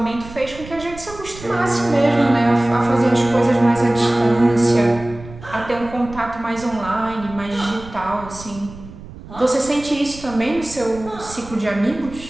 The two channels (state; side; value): noise; right; rumble, 16 dB below the sound